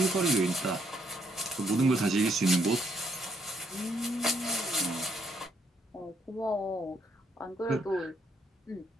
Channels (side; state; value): both; normal; correlation 0.71